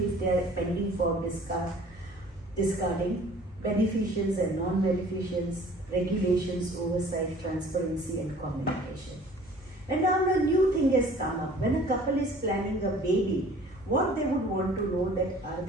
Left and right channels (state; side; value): normal; both; correlation 0.50